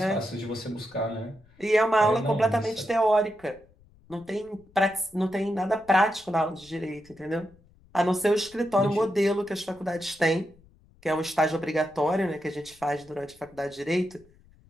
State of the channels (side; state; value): left; noise; rumble, 28 dB below the sound